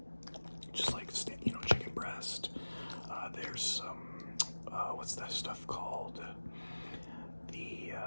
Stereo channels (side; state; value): both; inverted; correlation -1.00